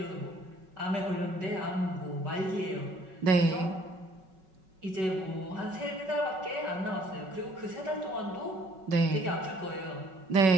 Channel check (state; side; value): late; left; 5.3 ms